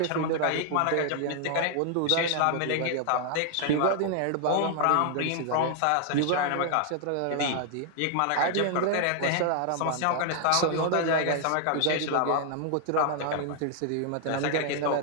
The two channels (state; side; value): different; both; correlation 0.00